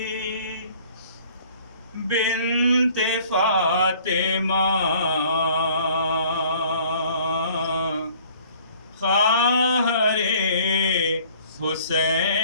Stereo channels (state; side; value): inverted; both; correlation -0.54